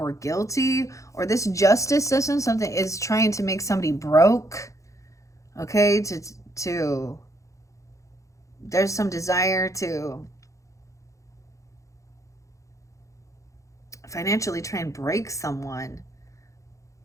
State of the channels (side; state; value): right; late; 0.15 ms